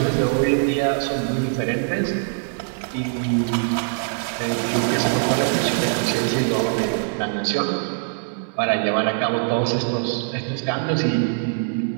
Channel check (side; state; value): left; silent; digital silence